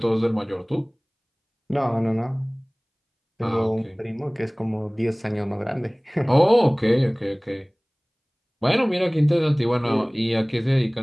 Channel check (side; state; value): both; identical; correlation 1.00